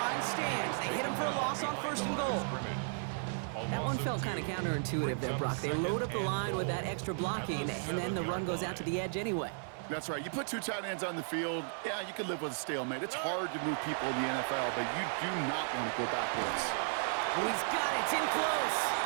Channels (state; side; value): silent; left; 55 dB below the other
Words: stand. They hit him for a loss on 1st and goal. That one felt kind of counterintuitive there, Brock. They load up the line with that extra blocking, and then the run goes out to the edge anyway. That's right. You put 2 tight ends on the field, yeah, you can live with a stalemate. It's hard to move people in the NFL, but you do not want to go backwards. Oh, he's got it. It's in close.